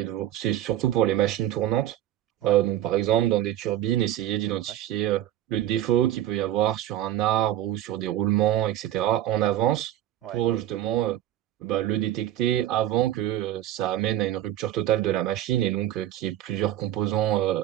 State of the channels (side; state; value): left; quieter; 12.7 dB